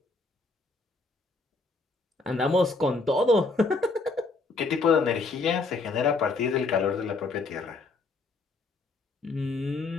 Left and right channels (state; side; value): quieter; right; 3.7 dB